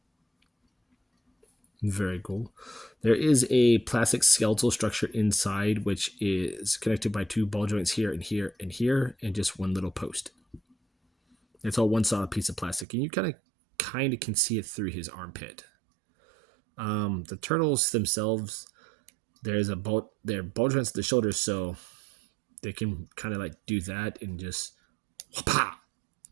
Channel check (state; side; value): drops out; left; at 12.9 s